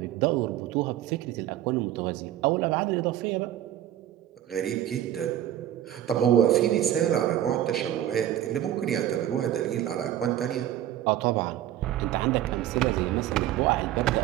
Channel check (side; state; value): left; quieter; 12.2 dB